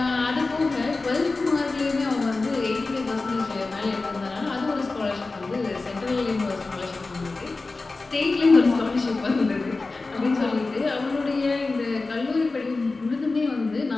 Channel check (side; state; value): right; quieter; 3.6 dB